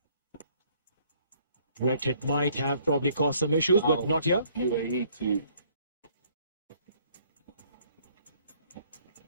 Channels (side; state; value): both; inverted; correlation -0.62